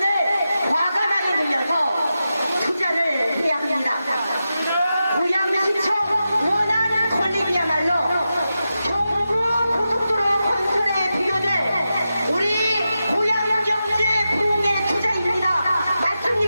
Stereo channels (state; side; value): inverted; both; correlation -0.90